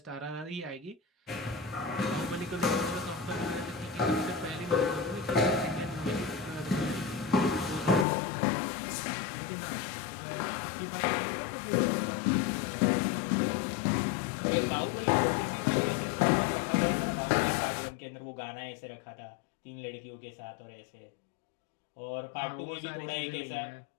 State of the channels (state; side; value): drops out; right; at 8.1 s